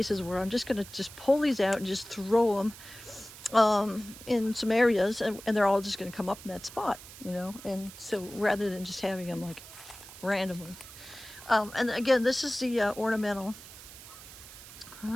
where I'm just gonna just pull these out and just throw them in some areas, and they're all just gonna come up in that spot, you know. And so rather than just having them like randomly. And again, this is the ornamental.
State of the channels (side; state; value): right; noise; hiss, 16 dB below the sound